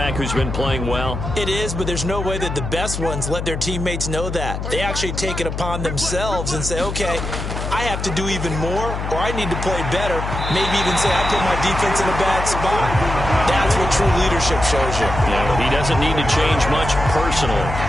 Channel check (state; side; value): noise; left; hum, 5 dB below the sound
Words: who's been playing well? It is, but there's no way that the best ones let their teammates know that. They actually take it upon themselves and say, okay, I I have to do even more, or I need to play better. Maybe even say I put my defense in a bad spot. That's what true leadership shows you. Yeah, well, he doesn't need to change much personally.